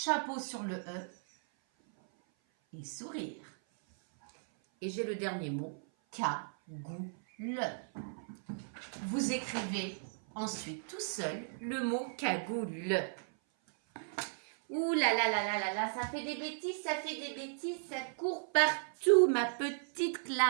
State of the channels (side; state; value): left; silent; 54 dB below the other